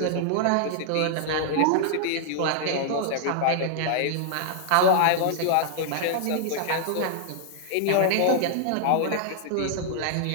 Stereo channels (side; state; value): both; different; correlation -0.01